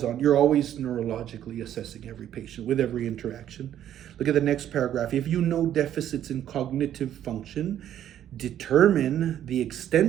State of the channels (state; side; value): quieter; left; 11.0 dB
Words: neurologically assessing every patient with every interaction. Look at the next paragraph. If you know deficits in cognitive function, determine the